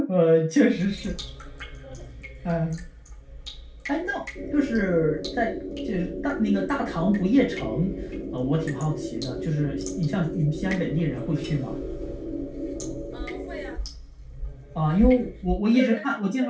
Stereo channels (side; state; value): both; identical; correlation 1.00